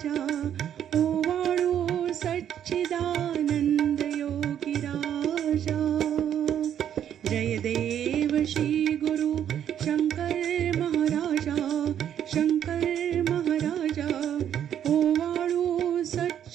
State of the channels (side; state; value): left; quieter; 9.8 dB